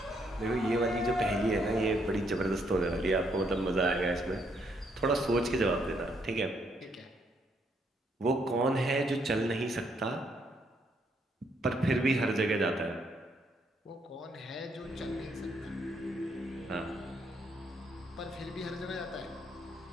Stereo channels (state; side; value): normal; both; correlation 0.73